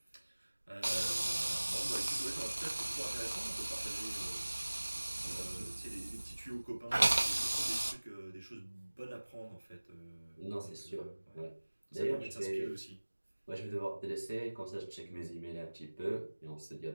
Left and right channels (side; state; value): both; inverted; correlation -1.00